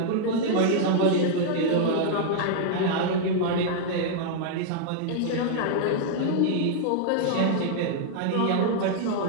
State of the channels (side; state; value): both; different; correlation -0.01